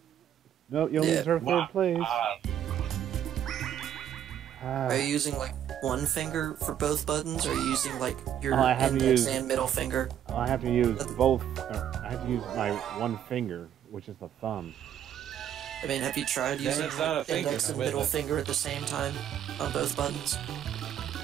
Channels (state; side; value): quieter; left; 10.0 dB